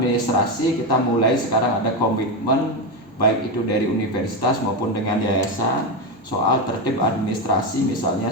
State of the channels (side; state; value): both; normal; correlation 0.12